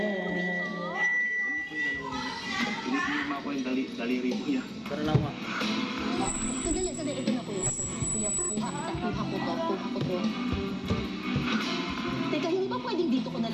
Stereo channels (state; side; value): identical; both; correlation 1.00